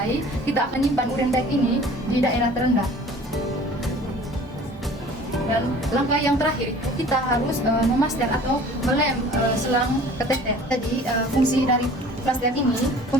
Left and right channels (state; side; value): normal; both; correlation 0.47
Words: kita akan nyimpan urin bag ini di daerah terendah. Dan langkah yang terakhir kita harus memaster atau melem selang keteter. Jadi fungsi dari plaster ini